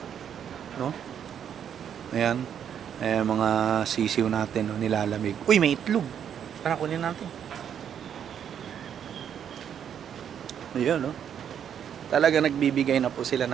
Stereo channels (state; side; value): quieter; left; 8.7 dB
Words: no? Ayan, mga sisiw natin, no, nilalamig. Uy, may itlog, tara kunin natin. Ayun, no? Talaga nagbibigay na po sila